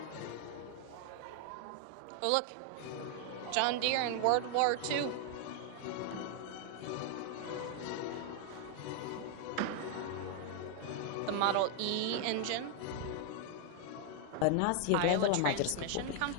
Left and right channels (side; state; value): both; different; correlation 0.00